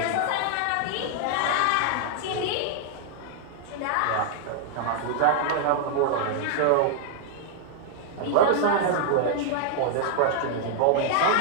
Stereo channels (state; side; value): different; both; correlation -0.01